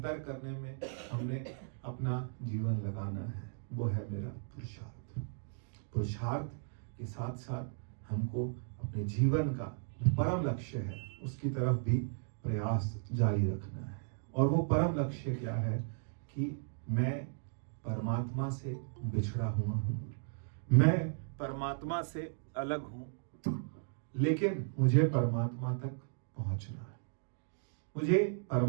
करने में हमने अपना जीवन लगाना है। वो है मेरा पुरुषार्थ। पुरुषार्थ के साथ साथ हमको अपने जीवन का परम लक्ष्य है उसकी तरफ भी प्रयास जारी रखना है। और वो परम लक्ष्य क्या है कि मैं परमात्मा से बिछड़ा हुआ हूँ, मैं परमात्मा से अलग हूँ, लेकिन मुझे परमात्मा तक पहुंचना है। मुझे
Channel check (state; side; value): silent; left; digital silence